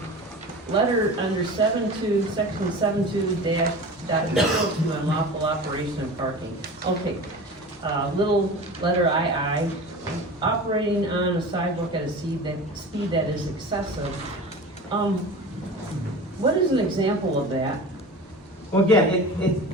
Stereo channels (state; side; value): normal; both; correlation 0.34